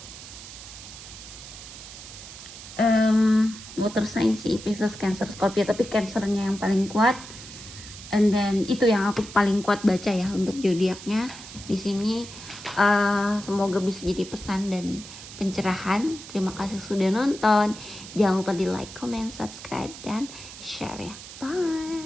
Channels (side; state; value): right; noise; hiss, 14 dB below the sound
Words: water sign sih, Pisces, Cancer, Scorpio, tapi Cancernya yang paling kuat. And then itu yang aku paling kuat baca ya untuk zodiaknya di sini. Semoga bisa jadi pesan dan pencerahan. Terima kasih sudah nonton. Jangan lupa di like, comment, subscribe dan share ya.